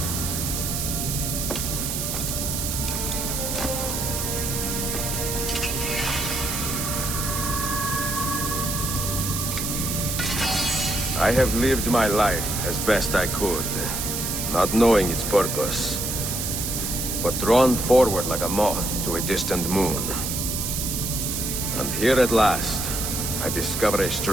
I have lived my life as best I could, not knowing its purpose, but drawn forward like a moth to a distant moon. And here at last, I discover a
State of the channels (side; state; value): right; noise; hiss, 2 dB below the sound